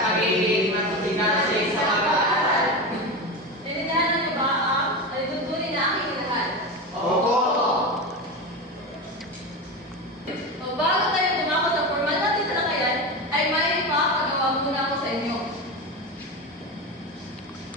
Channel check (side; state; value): both; normal; correlation 0.21